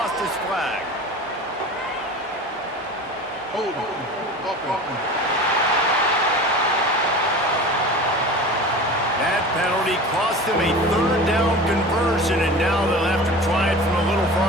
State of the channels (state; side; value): normal; both; correlation 0.35